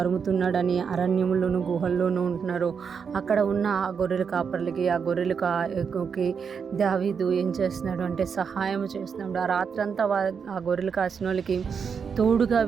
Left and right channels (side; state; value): left; quieter; 6.4 dB